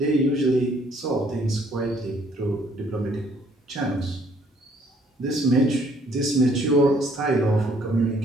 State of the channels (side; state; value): both; normal; correlation 0.63